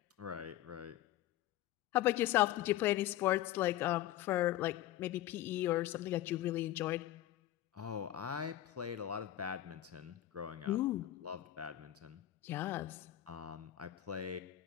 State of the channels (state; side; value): quieter; right; 13.7 dB